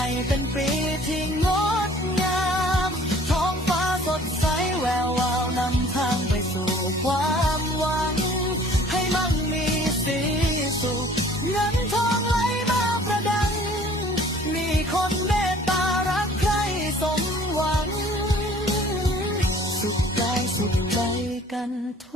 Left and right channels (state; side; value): normal; both; correlation 0.52